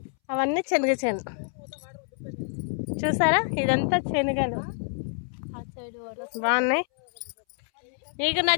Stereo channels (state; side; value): silent; right; 60 dB below the other